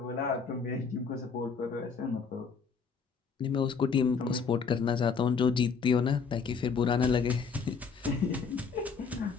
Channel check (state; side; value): quieter; right; 5.5 dB